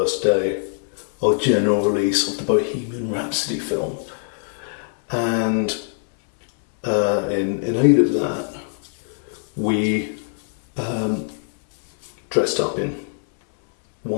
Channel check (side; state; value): right; silent; 64 dB below the other